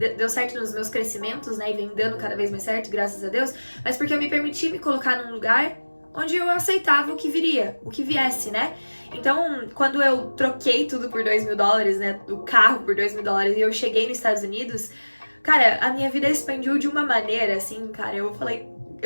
certo nos meus crescimentos, né, e vem dando cada vez mais certo, graças a Deus, mas porque eu me permiti me colocar num lugar onde eu aceitava o que viria, o que viesse, né? Então, quando eu troquei tudo por $2.000, né, o carro por $2.000 e eu cheguei nos Estados Unidos, cara, a minha vida expandiu de uma maneira, assim, cara,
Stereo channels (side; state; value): both; inverted; correlation -1.00